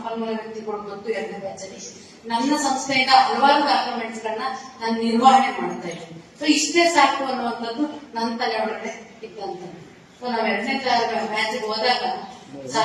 ವ್ಯಕ್ತಿಗಳು ಗೊತ್ತು 2ನೇ ಬ್ಯಾಚ್ ಅಲ್ಲಿ ನನ್ನ ಸಂಸ್ಥೆಯಿಂದ ಹಲವಾರು ಡಾಕ್ಯುಮೆಂಟ್ಸ್ ಗಳನ್ನ ನಾನು ನಿರ್ವಹಣೆ ಮಾಡ್ತಾ ಇದ್ದೀನಿ. ಸೊ ಇಷ್ಟೇ ಸಾಕು ಅನ್ನುವಂಥದ್ದು ನನ್ನ ತಲೆ ಒಳಗಡೆ ಇದ್ದಂತ. ಸೊ ನಾವ್ 2ನೇ ಬ್ಯಾಚ್ ಹೋದಾಗ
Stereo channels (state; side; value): identical; both; correlation 1.00